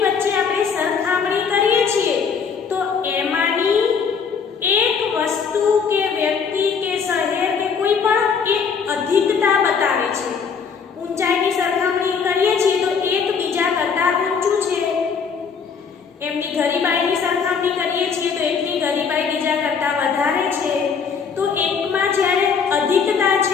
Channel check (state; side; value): quieter; right; 6.1 dB